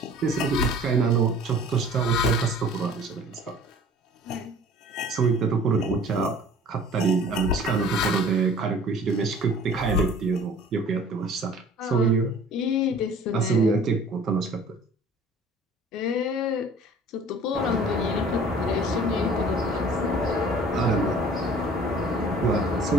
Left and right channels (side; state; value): both; normal; correlation 0.48